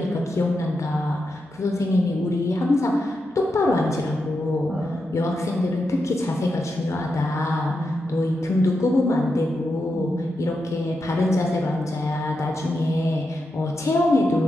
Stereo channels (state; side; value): normal; both; correlation 0.87